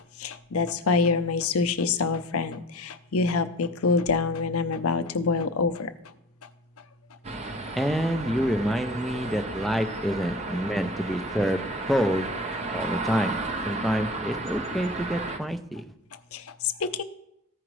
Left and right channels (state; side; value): normal; both; correlation 0.40